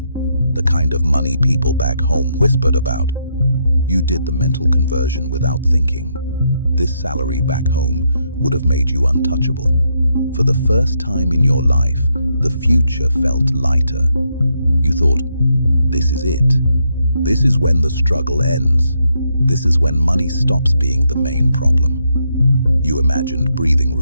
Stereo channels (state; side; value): inverted; both; correlation -0.78